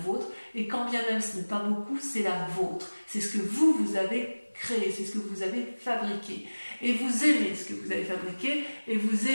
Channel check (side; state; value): both; inverted; correlation -1.00